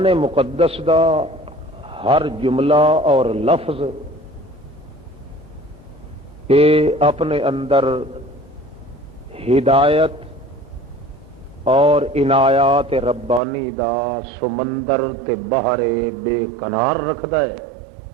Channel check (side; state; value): left; drops out; at 13.4 s